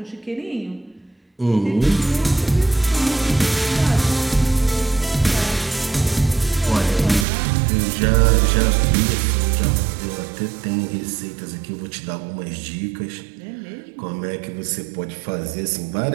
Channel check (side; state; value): left; drops out; at 7.2 s